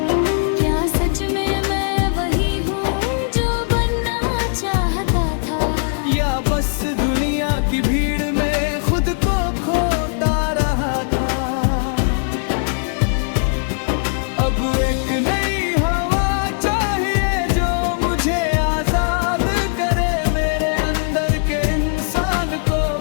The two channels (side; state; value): right; silent; 66 dB below the other